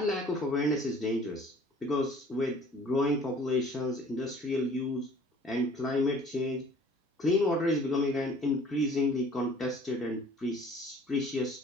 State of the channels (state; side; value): normal; both; correlation 0.52